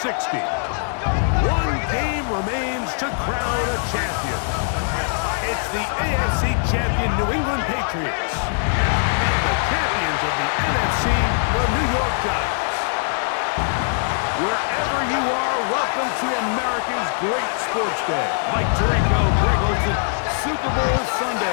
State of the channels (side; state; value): right; silent; digital silence